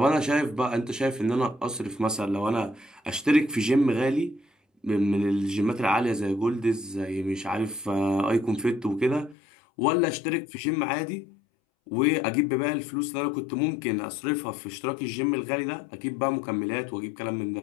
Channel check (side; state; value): right; drops out; at 9.3 s